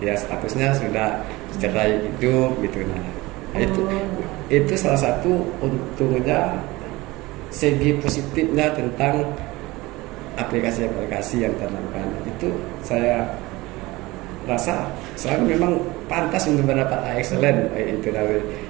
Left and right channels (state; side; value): quieter; left; 20.8 dB